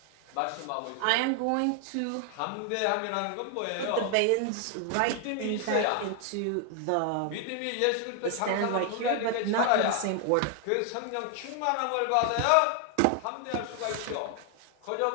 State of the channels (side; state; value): both; different; correlation 0.00